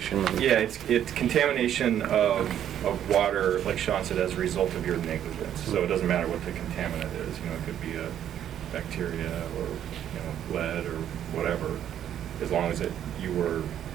yeah, it's contamination of water, like Sean said, as a result of your negligence. So it doesn't matter what the contaminant is, it could be a bacteria or, lead or whatever, as long as you were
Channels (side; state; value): left; quieter; 10.4 dB